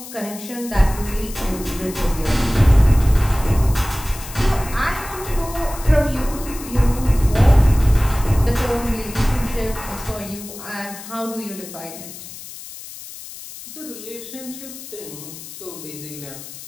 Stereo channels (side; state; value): left; noise; hiss, 14 dB below the sound